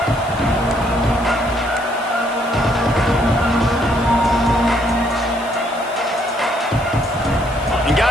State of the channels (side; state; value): left; noise; hiss, 21 dB below the sound